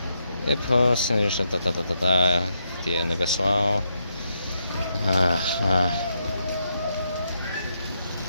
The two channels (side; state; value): both; inverted; correlation -0.80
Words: et puis the anniversaire.